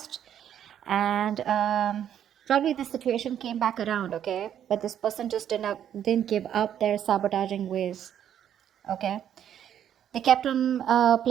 and probably the situation came back around. Okay, but this person just didn't give up their sabotaging ways. Okay, they kept on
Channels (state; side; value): quieter; left; 9.9 dB